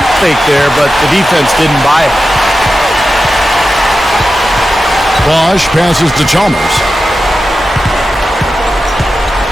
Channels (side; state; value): both; normal; correlation 0.92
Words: fake there, but the defense didn't buy it. Bosh passes to Chalmers.